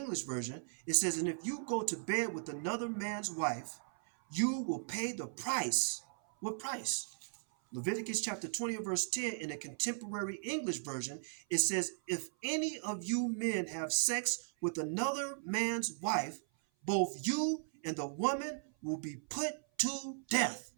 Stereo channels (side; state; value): left; silent; 53 dB below the other